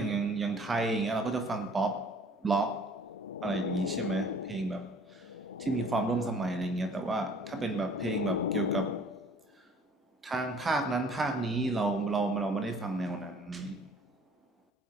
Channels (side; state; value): both; normal; correlation 0.53